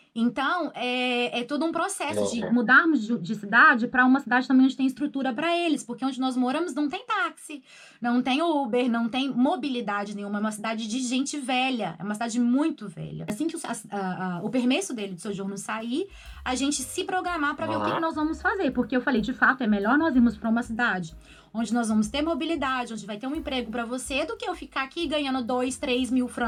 Então, é todo um processo de mudarmos de cidade para uma cidade também onde tem estrutura para eles, porque onde nós moramos não tem táxi, não tem Uber, não tem mobilidade nenhuma, é uma cidade de gente velha, é uma cidade muito velha. Assim que o permesso dele de sojourno sair, a gente se programar para ver o que nós vamos fazer, porque eu falei, de fato, é melhor nós irmos para uma cidade onde nós vamos ter mobilidade, onde vai ter um emprego para você, do que eu ficar aqui ganhando 2, 3 mil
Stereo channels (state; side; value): identical; both; correlation 1.00